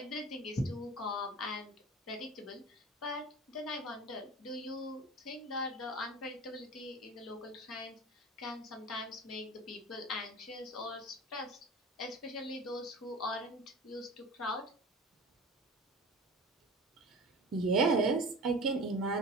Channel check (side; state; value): both; normal; correlation 0.36